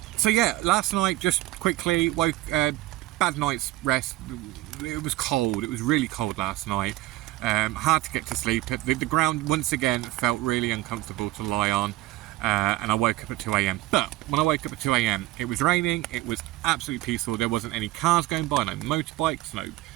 So yeah, last night, just quickly woke, bad night's rest. It was cold, it was really cold last night. Hard to get to sleep. The ground once again felt really uncomfortable to lie on. And I woke up at 2 AM. But when I woke up at 2 AM, it was raining, it was absolutely peaceful, there wasn't any cars going by, no motorbikes, no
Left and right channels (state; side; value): quieter; left; 17.6 dB